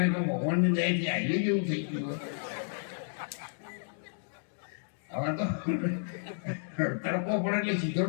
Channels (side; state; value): right; silent; digital silence